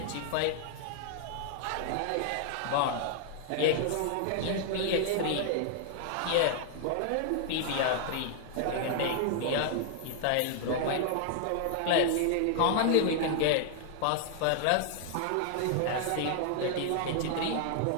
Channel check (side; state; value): both; different; correlation 0.00